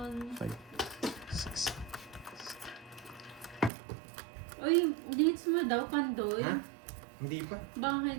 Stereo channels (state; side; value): drops out; left; at 3.7 s